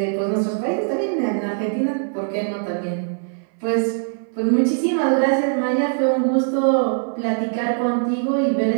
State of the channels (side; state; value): left; silent; 62 dB below the other